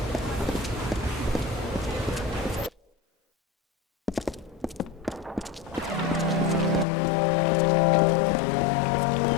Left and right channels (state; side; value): drops out; right; at 6.9 s